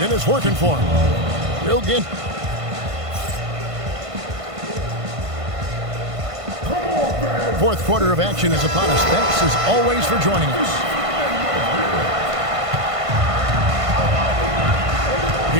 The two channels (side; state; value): left; late; 1.5 ms